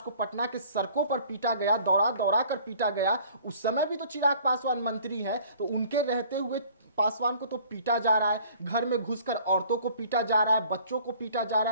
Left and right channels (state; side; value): inverted; both; correlation -0.52